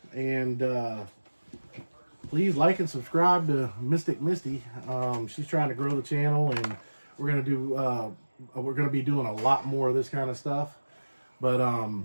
and please like and subscribe to Mystic Misty. She's trying to grow the channel, and we're gonna be doing a lot more of this kind of stuff. But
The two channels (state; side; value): inverted; both; correlation -1.00